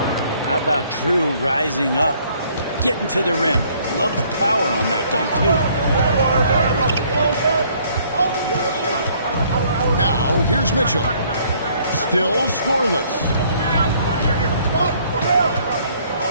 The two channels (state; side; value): inverted; both; correlation -0.62